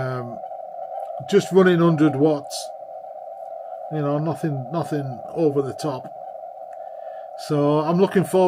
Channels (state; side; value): identical; both; correlation 1.00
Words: just running 100 watts, nothing over the top. So I'm looking